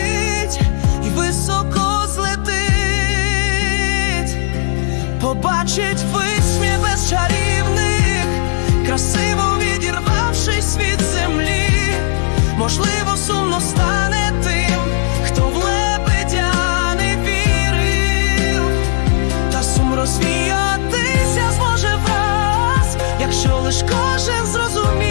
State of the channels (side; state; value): right; silent; digital silence